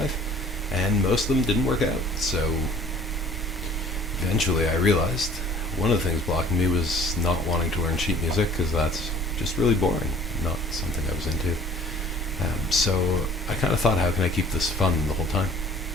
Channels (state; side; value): normal; both; correlation 0.51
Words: life, and most of them didn't work out. So eventually I realized one of the things blocking me was not wanting to learn sheet music, because that's just really boring, not something I was into. So I kind of thought, how can I keep this fun the whole time?